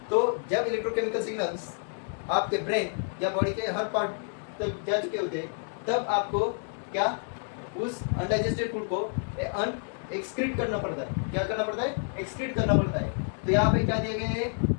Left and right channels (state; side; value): silent; right; 59 dB below the other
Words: तो जब इलेक्ट्रोकेमिकल सिग्नल्स आपके ब्रेन या बॉडी के हर पार्ट तक जा चुके होते हैं तब आपको क्या, उस अनडाइजेस्टेड फूड को एक्सक्रीट करना पड़ता है। क्या करना पड़ता है, एक्सक्रीट करना पड़ता है। तो यहाँ पे क्या दिए गए हैं,